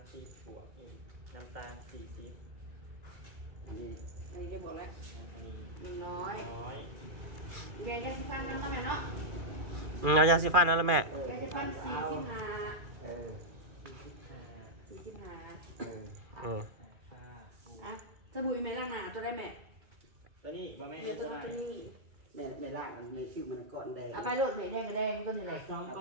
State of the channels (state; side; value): late; left; 2.4 ms